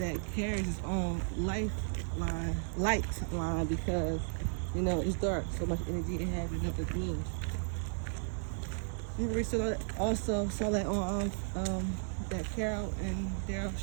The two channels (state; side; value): silent; left; 55 dB below the other